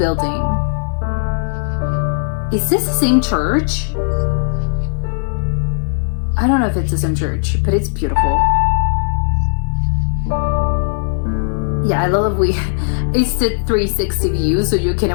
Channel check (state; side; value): silent; right; digital silence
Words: Is this the same church? I don't know if it's the same church, but it's beautiful. Yeah, I love it's the 360 view, so you can